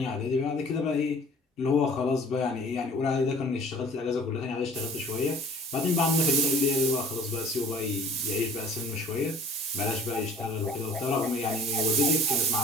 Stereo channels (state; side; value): normal; both; correlation 0.49